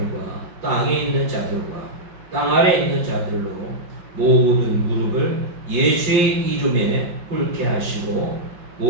땅에 있는 자들과 땅 아래 있는 자들로 모든 무릎을 예수의 이름에 꿇게 하시고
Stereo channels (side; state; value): left; late; 5.7 ms